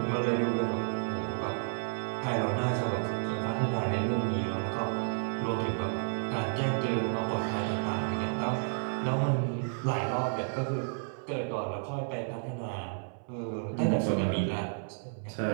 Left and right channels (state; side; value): silent; left; 57 dB below the other